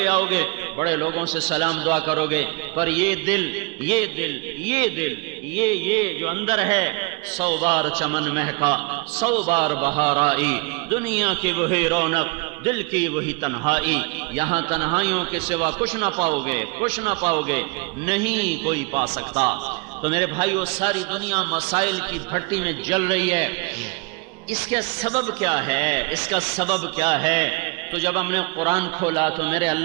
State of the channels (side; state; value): left; quieter; 29.0 dB